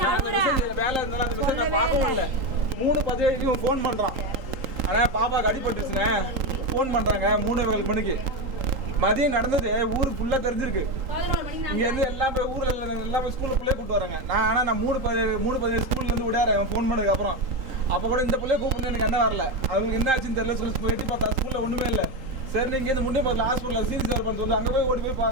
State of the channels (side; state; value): left; late; 3.8 ms